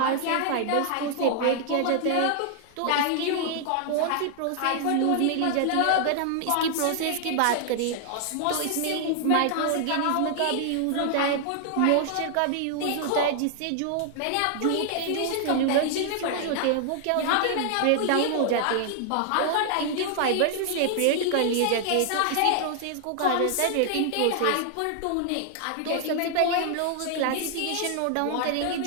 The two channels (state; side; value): different; both; correlation 0.00